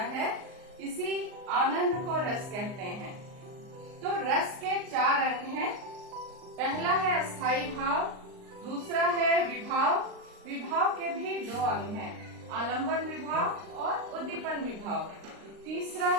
है, इसी आनंद को रस कहते हैं। तो रस के 4 अंग हैं। पहला है अस्थाई भाव, दूसरा है विभाव। विभाव के भी 2 अंग हैं, आलंबन विभाव और उद्दीपन विभाव। तीसरा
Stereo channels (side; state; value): left; late; 39 ms